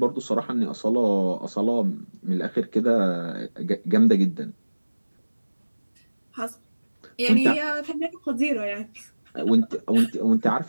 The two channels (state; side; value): inverted; both; correlation -1.00